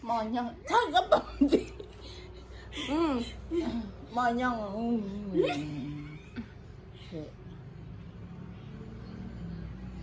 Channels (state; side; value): identical; both; correlation 1.00